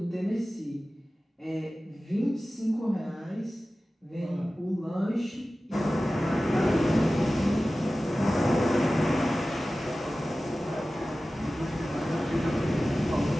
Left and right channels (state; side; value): normal; both; correlation 0.96